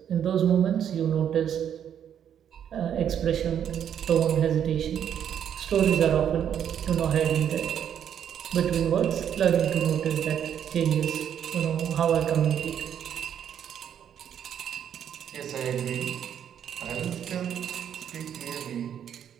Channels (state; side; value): quieter; left; 9.1 dB